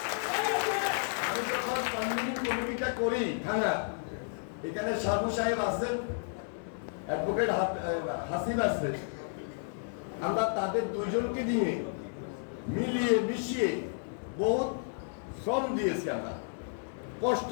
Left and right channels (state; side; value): silent; right; digital silence